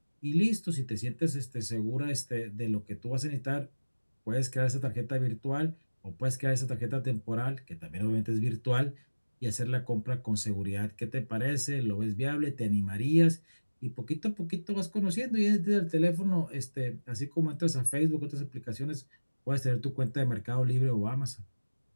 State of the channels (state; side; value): inverted; both; correlation -1.00